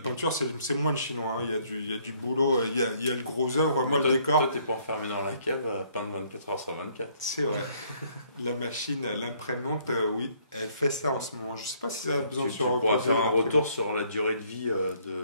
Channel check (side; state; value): both; inverted; correlation -0.64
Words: c'est moins le chinois. Hein. Il y a du boulot, il y a le gros œuvre. Moi, le décor. Toi, t'es pas enfermé dans la cave à peindre 24 heures sur 24. C'est vrai. La machine, l'imprimante, oui, elle fait ça en ce moment. Je sais pas si ça a besoin de se reposer. On pourra faire un retour sur la durée de vie